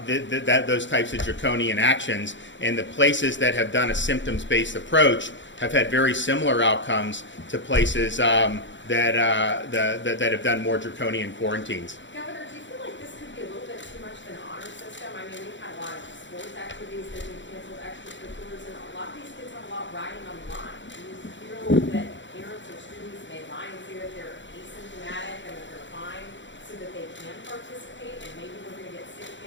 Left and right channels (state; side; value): late; right; 0.54 ms